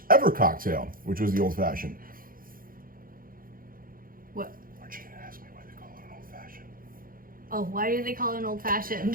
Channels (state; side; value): late; left; 0.41 ms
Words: ever cocktail, which was the old fashioned. What? Aren't you going to ask me why they call it an old fashioned? Oh, why do they call it an old